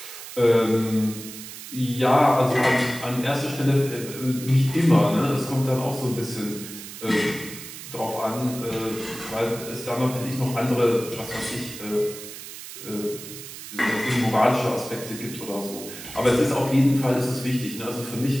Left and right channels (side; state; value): right; noise; hiss, 12 dB below the sound